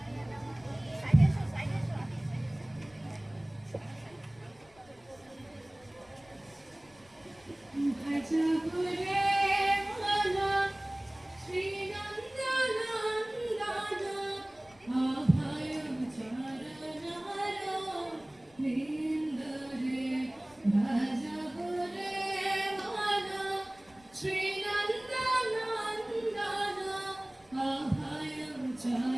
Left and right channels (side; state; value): left; noise; rumble, 29 dB below the sound